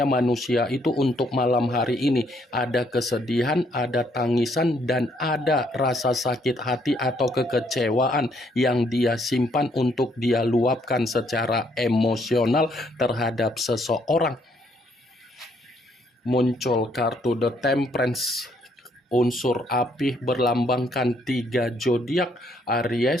manusia itu untuk malam hari ini ada kesedihan, ada tangisan, dan ada rasa sakit hati atau kekecewaan yang dia simpan untuk dia luapkan secara emosional terhadap seseorang. Muncul kartu The Temperance, unsur api berlambangkan 3 zodiak,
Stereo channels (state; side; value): normal; both; correlation 0.69